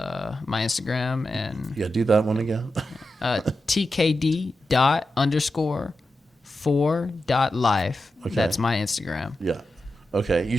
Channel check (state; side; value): normal; both; correlation 0.90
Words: my Instagram. And yeah, do that one again. tkd._4.life. Okay. That's my Instagram. Yeah. Okay. You